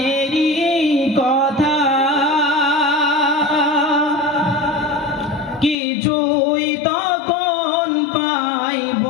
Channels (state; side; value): drops out; right; at 5.8 s